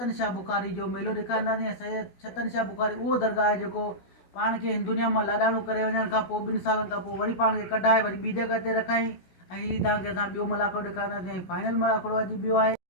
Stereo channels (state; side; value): late; right; 16 ms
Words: शाह बुखारी जो मेलो ॾेखारींदासीं ऐं सैयद छतन शाह बुखारी उहो दरगाह आहे जेको पाण खे हिन दुनिया मां लाॾाणो करे वञण खां पोइ 2 सालनि खां पोइ वरी पाण खे कढाए वरी ॿी जॻह ते रखाई ऐं हीअ तव्हांखे असां ॿियो मलाखड़ो ॾेखारींदासीं ऐं फाइनल मलाखड़ो अॼु ॿियो आहे